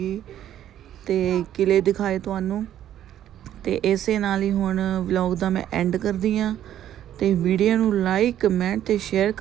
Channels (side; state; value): left; quieter; 11.4 dB